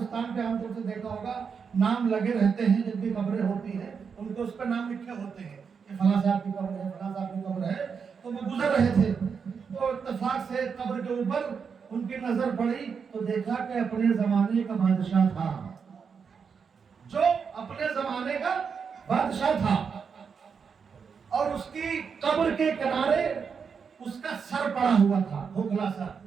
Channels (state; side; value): quieter; left; 6.1 dB